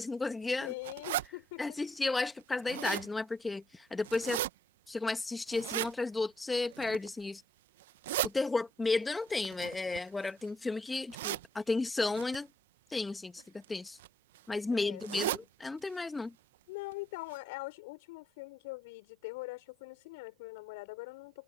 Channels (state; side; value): normal; both; correlation 0.72